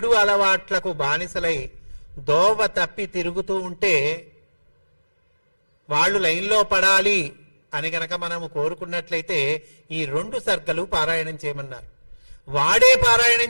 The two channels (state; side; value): inverted; both; correlation -1.00